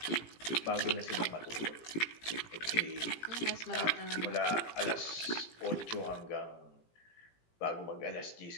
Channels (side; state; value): right; late; 18 ms